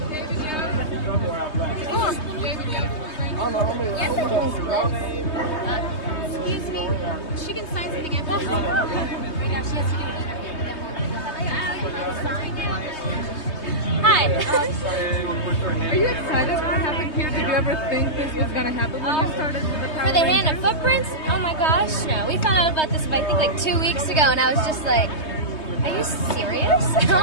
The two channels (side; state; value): right; late; 3.2 ms